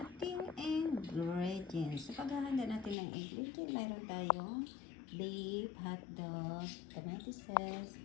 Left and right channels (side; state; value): right; drops out; at 3.0 s